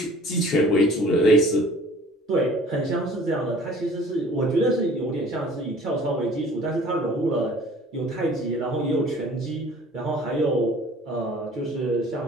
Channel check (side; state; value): both; normal; correlation 0.49